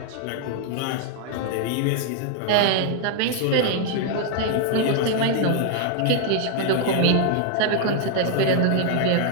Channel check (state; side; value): different; both; correlation 0.00